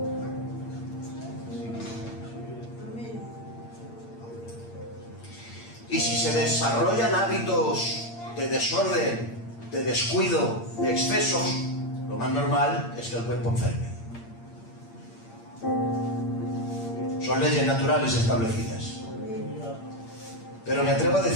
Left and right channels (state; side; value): late; right; 8.7 ms